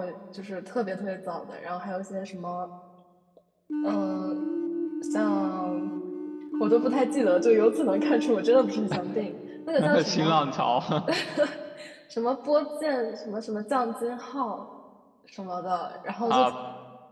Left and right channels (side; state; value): both; identical; correlation 1.00